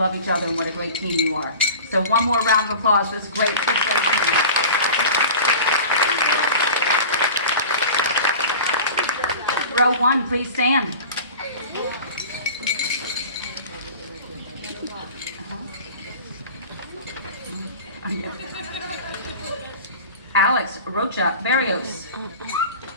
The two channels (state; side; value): inverted; both; correlation -0.37